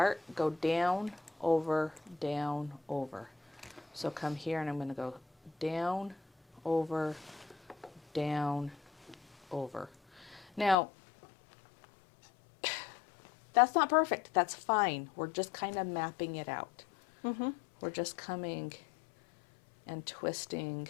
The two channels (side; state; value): right; drops out; at 10.8 s